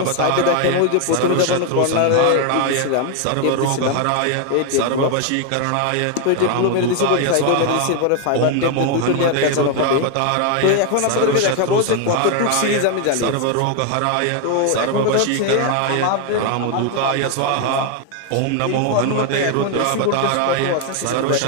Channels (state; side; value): different; both; correlation 0.01